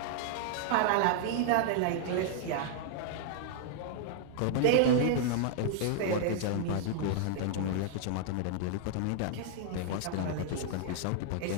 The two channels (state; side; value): different; both; correlation -0.01